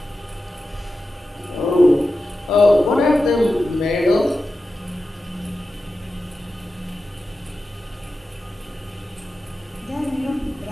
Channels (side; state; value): both; normal; correlation 0.92